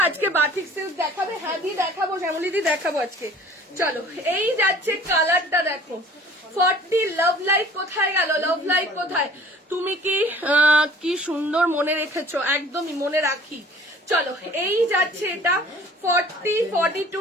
আজকে বাটিক সিল্ক দেখাবে? হ্যাঁ দি দেখাবো, শ্যামলী দি দেখাবো আজকে। চলো এই যাচ্ছে কালারটা দেখো, 40। লাভ লাইট কোথায় গেল? লাভ লাইট কোথায়? তুমি কি সুন্দর মনে রেখেছো, একদমই মনে রাখি। চলো এই যাচ্ছে এটা 40,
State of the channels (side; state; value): both; normal; correlation 0.50